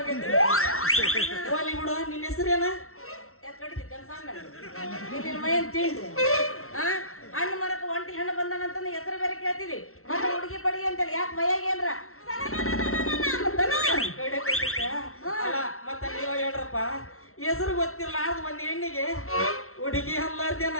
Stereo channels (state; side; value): late; right; 0.63 ms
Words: ಹೋಲಿ ಬಿಡು ನಿನ್ನ ಹೆಸರೇನ ಯಾಕೆ ಕಡಿತಿ ಕನ್ಸಂಗ ನಿನ್ನ ಮೈನ್ ತಿಂಡಿ ಹಣ್ಣು ಮರಕ್ಕೆ ಒಂಟಿ ಹಣ್ಣು ಬಂದಾನಂತಂದು ಹೆಸರು ಬೇರೆ ಕೇಳ್ತೀವಿ ಮತ್ತೆ ಹುಡುಗಿ ಪಡಿ ಅಂತೇಳಿ ಯಾಕೆ ಮೈಯಾಗ ಏನ್ರ ಮತ್ತ ನೀವ ಹೇಳ್ರಪ್ಪ ಹೆಸರು ಗೊತ್ತಿರ್ಲಾರ್ದ ಒಂದ್ ಹೆಣ್ಣಿಗೆ ಹುಡುಗಿ ಅಲ್ಲಾರ್ದೇನ